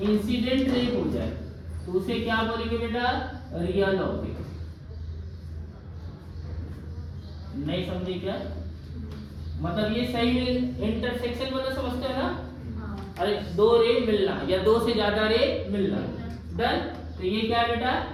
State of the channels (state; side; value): identical; both; correlation 1.00